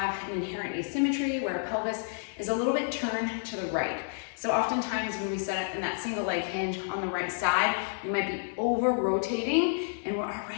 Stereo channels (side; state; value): right; silent; 55 dB below the other